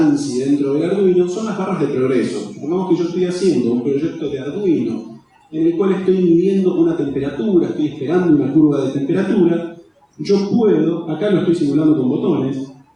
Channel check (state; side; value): identical; both; correlation 1.00